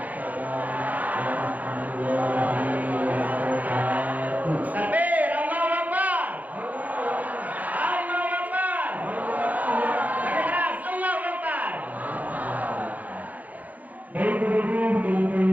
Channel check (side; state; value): left; late; 0.079 ms